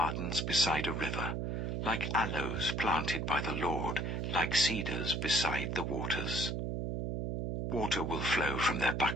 beside a river, like aloes planted by the Lord, like cedars beside the waters. Water will flow from their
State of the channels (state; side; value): noise; right; hum, 1 dB below the sound